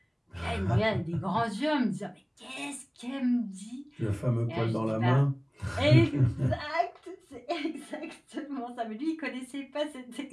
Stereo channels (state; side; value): identical; both; correlation 1.00